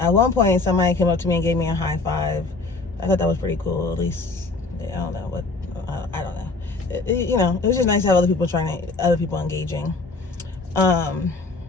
one point somebody came up to me and gave me a high five. I thought that was pretty cool. At least I don't know what I don't know. You know, it was just nice to have other people engaging,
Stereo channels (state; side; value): quieter; right; 3.7 dB